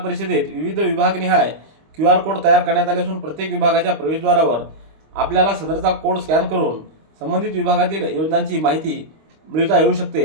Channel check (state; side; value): late; left; 25 ms